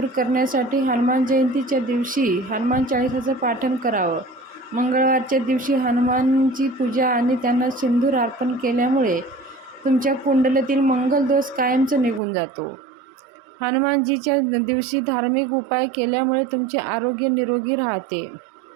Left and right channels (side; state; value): left; drops out; at 12.2 s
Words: करण्यासाठी हनुमान जयंतीच्या दिवशी हनुमान चाळीसाचं पाठन करावं। मंगळवारच्या दिवशी हनुमानची पूजा आणि त्यांना सिंदूर अर्पण केल्यामुळे तुमच्या कुंडलीतील मंगल दोष कायमचा निघून जातो। हनुमानजीच्या दिवशी धार्मिक उपाय केल्यामुळे तुमचे आरोग्य निरोगी राहते।